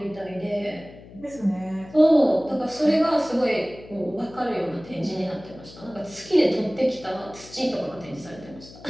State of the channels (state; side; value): noise; left; hum, 19 dB below the sound